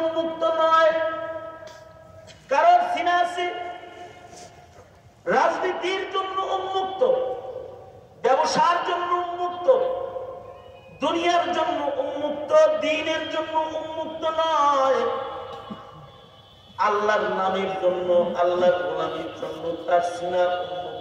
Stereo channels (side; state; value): both; identical; correlation 1.00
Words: উন্মুক্ত নয়, কারণ সিনা আছে রাজনীতির জন্য উন্মুক্ত, ব্যবসার জন্য উন্মুক্ত, দুনিয়ার জন্য উন্মুক্ত, দ্বীনের জন্য উন্মুক্ত নয়। আল্লাহর নামের জন্য, আল্লাহর গোলামীর জন্য তার সিনা